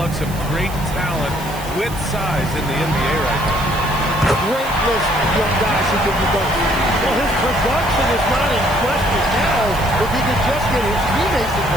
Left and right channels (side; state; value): right; noise; hiss, 15 dB below the sound